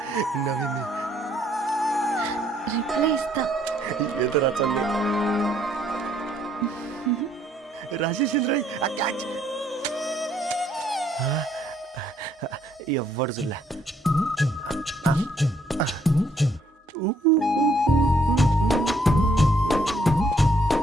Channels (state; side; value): normal; both; correlation 0.68